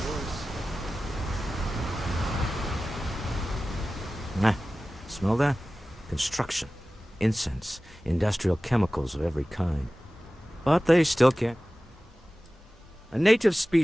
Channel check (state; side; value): normal; both; correlation 0.96